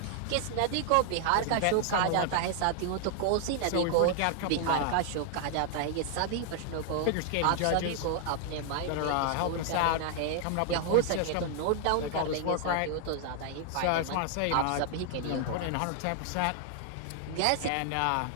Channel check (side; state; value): both; different; correlation 0.00